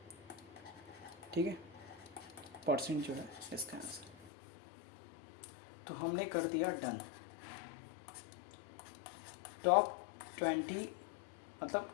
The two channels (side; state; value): right; drops out; at 4.3 s